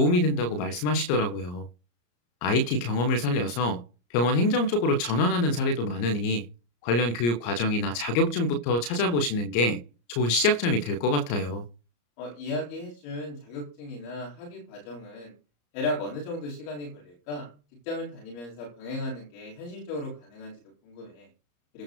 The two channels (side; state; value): right; late; 34 ms